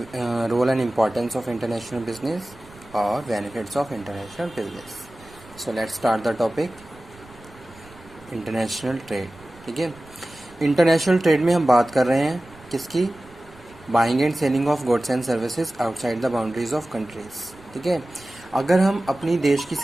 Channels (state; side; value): noise; right; rumble, 24 dB below the sound